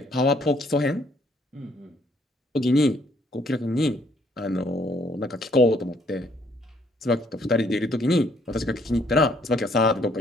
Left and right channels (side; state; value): both; normal; correlation 0.67